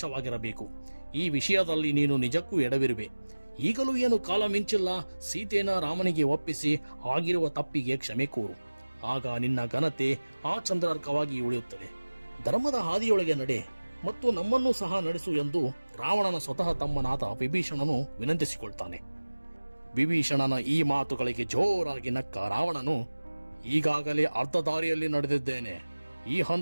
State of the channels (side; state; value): both; inverted; correlation -1.00